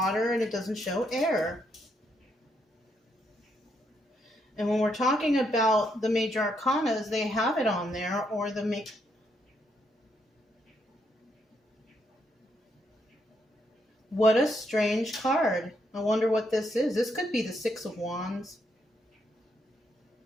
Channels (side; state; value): both; normal; correlation 0.77